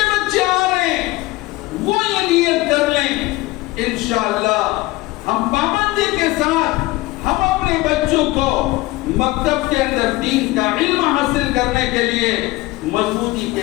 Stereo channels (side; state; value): right; quieter; 19.9 dB